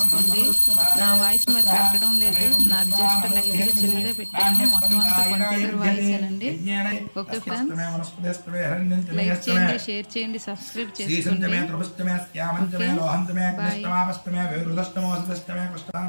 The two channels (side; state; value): both; inverted; correlation -1.00